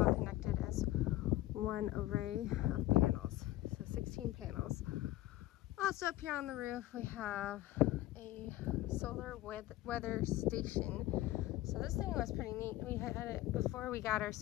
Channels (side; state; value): right; quieter; 16.0 dB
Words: connected as one array of panels. So 16 panels. Also up here on the roof we have a solar weather station. So this thing was pretty neat. We had it before we got our